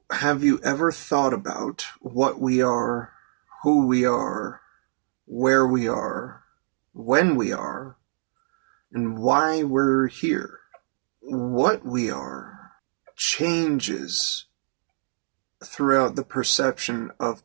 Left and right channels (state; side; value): silent; left; digital silence